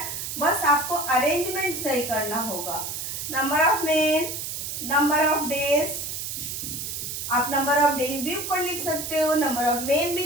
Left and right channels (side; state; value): right; noise; hiss, 5 dB below the sound